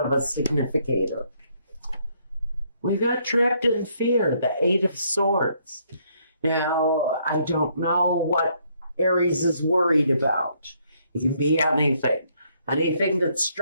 a significator. We got trapped in fear, the Eight of Swords. Now, I don't know what Aries is worried about. It can be anything. Anything that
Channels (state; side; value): inverted; both; correlation -0.70